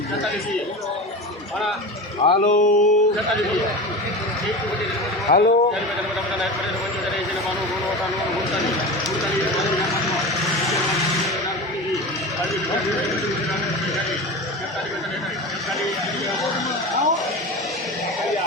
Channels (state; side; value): normal; both; correlation 0.28